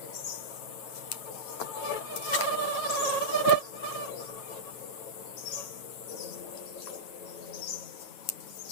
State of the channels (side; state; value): right; late; 9.0 ms